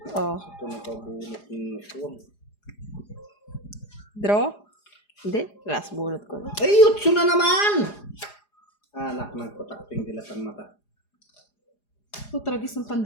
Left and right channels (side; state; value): right; late; 4.9 ms